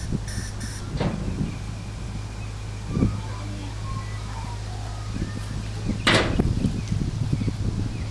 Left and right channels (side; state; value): both; identical; correlation 1.00